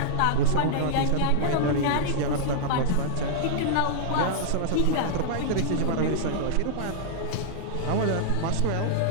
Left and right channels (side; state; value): both; different; correlation -0.01